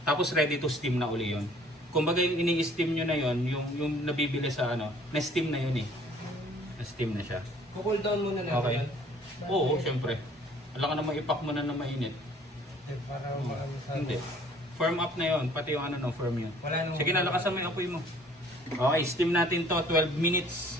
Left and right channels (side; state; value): both; normal; correlation 0.56